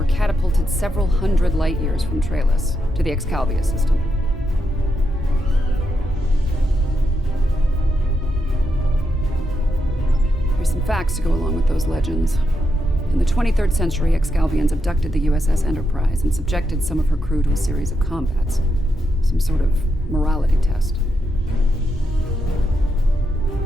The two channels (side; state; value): both; normal; correlation 0.83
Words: catapulted several hundred light years from Trailus to the Excalibur system. Here's some facts to go along with those legends. In the 23rd century, Excalbians abducted the USS Enterprise and subjected some of her crew to a series of combats. Some sort of morality test.